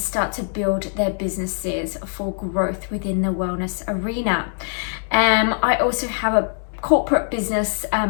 to build their businesses for growth within the wellness arena. I also have a corporate business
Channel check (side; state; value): right; silent; digital silence